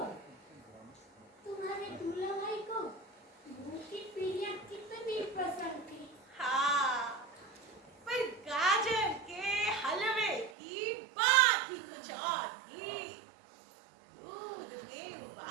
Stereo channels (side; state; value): left; drops out; at 10.5 s